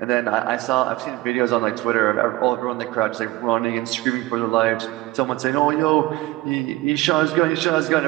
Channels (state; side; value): quieter; left; 18.9 dB